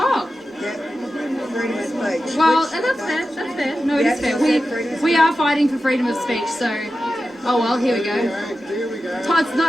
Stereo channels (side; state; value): both; normal; correlation 0.92